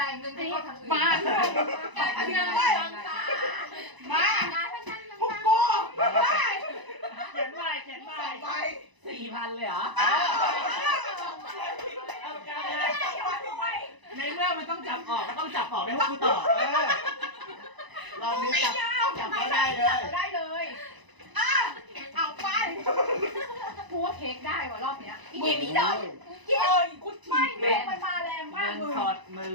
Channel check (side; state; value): left; late; 1.0 ms